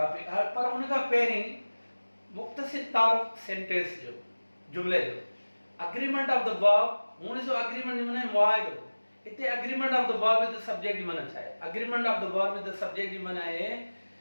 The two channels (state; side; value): inverted; both; correlation -1.00